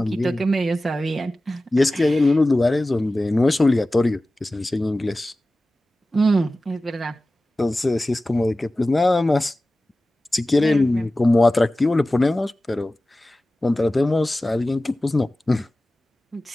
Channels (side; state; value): both; normal; correlation 0.96